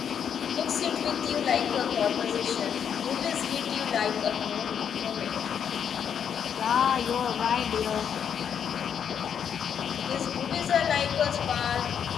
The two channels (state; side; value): quieter; right; 8.1 dB